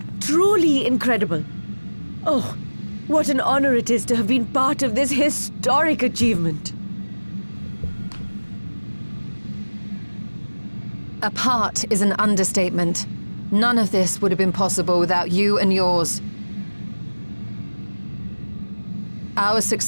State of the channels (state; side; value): inverted; both; correlation -1.00